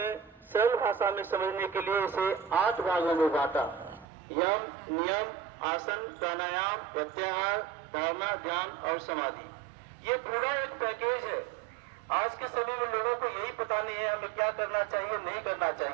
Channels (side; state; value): left; drops out; at 4.0 s